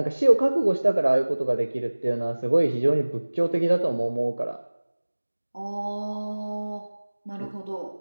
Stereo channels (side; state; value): both; inverted; correlation -1.00